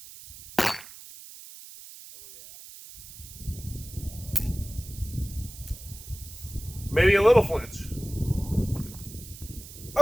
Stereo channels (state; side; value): noise; right; hiss, 15 dB below the sound